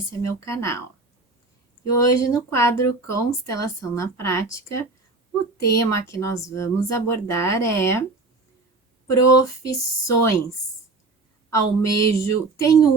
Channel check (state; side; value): quieter; left; 3.5 dB